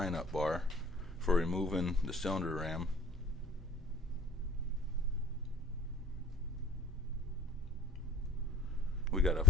bar for removing the cylinder ram. We got a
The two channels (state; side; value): normal; both; correlation 0.48